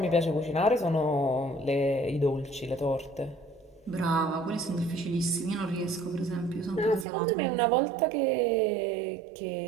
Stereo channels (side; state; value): left; drops out; at 7.1 s